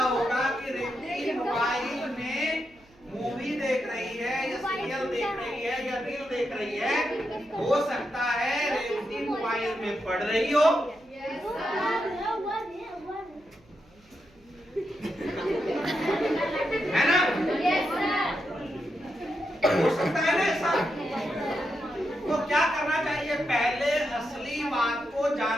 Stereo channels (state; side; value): noise; right; hum, 30 dB below the sound